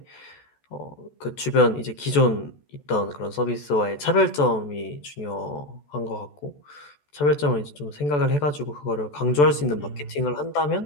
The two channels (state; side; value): late; right; 14 ms